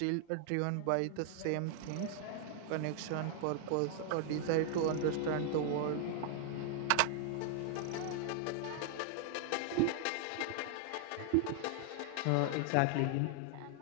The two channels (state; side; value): different; both; correlation 0.00